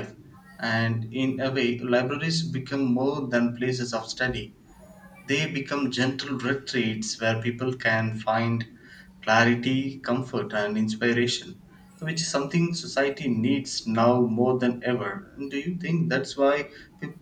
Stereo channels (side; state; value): both; identical; correlation 1.00